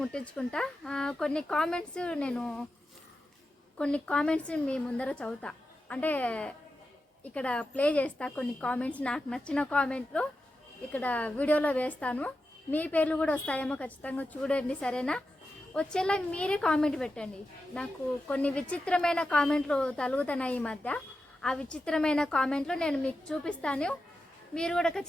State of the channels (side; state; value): both; normal; correlation 0.90